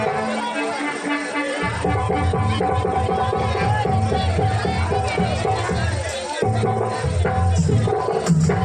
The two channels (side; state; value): both; identical; correlation 1.00